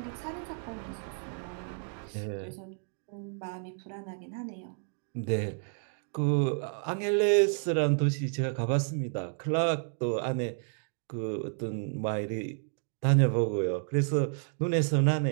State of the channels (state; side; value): silent; left; 57 dB below the other